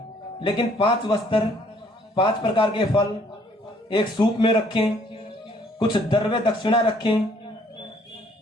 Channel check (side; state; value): both; normal; correlation 0.62